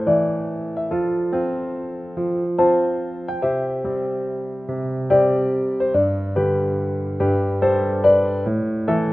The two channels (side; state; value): both; normal; correlation 0.97